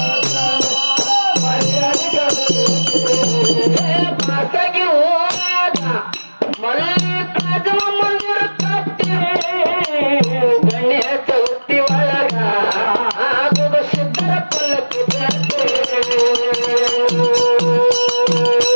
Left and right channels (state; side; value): inverted; both; correlation -1.00